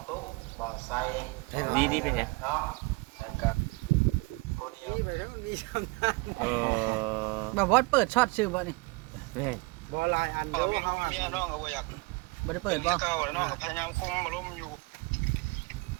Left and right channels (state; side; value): quieter; left; 26.2 dB